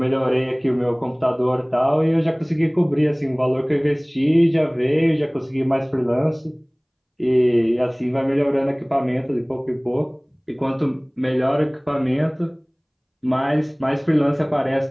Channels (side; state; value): both; identical; correlation 1.00